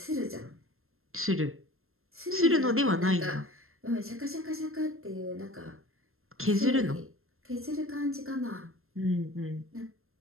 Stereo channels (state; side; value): late; left; 0.61 ms